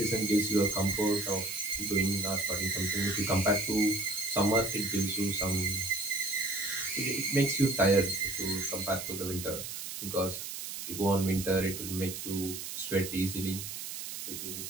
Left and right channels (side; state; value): right; noise; hiss, 7 dB below the sound